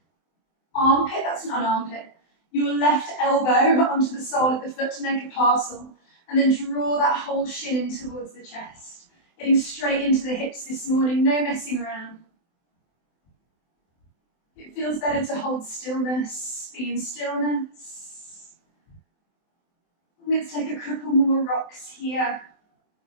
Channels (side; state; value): right; late; 23 ms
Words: armpit, that's not an armpit, your left elbow onto the sole of the foot to make a parcel, and then draw that whole shin in towards the chest. Getting straight into the hips this morning, no messing around. It feels better to hold stillness, be in stillness. Let's take a couple more rocks here